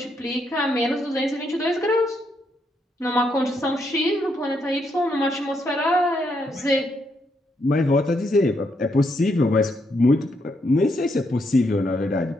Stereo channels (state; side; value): normal; both; correlation 0.77